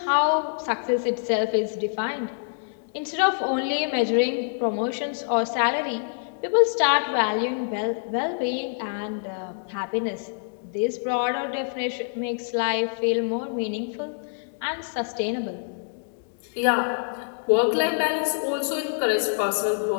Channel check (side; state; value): right; silent; digital silence